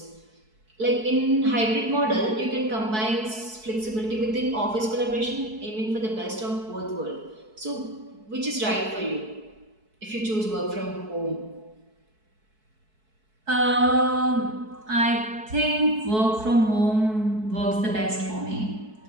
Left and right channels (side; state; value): left; late; 4.6 ms